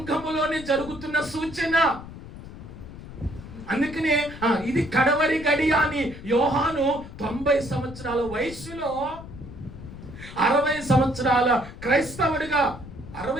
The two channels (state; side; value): noise; left; rumble, 14 dB below the sound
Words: జరుగుతున్న సూచన. అందుకనే ఇది కడవరి గడియ అని యోహాను 90 సంవత్సరాల వయసులో 60 సంవత్సరాల క్రైస్తవుడిగా,